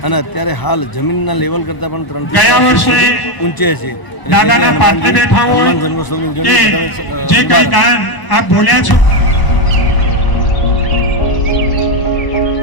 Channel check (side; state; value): right; late; 1.0 ms